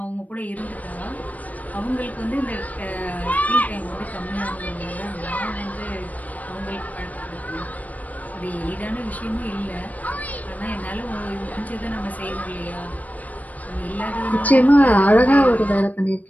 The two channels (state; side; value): late; right; 0.074 ms